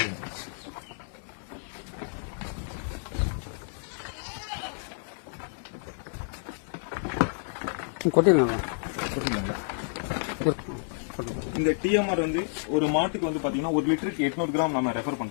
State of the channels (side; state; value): right; silent; 58 dB below the other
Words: கொட்டிடலாம். இந்த டிஎம்ஆர் வந்து ஒரு மாட்டுக்கு வந்து பாத்தீங்கன்னா 1 லிட்டருக்கு 800 கிராம் நம்ம ரெஃபர்